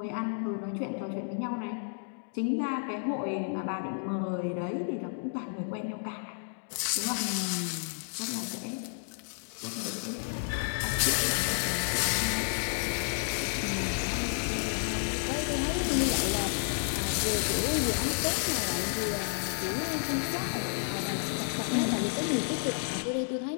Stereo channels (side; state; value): right; silent; digital silence